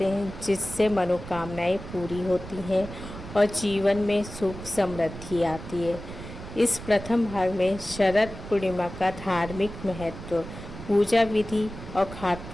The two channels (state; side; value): noise; right; rumble, 12 dB below the sound